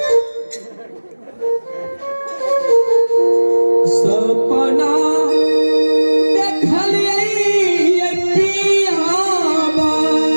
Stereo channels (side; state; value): both; inverted; correlation -1.00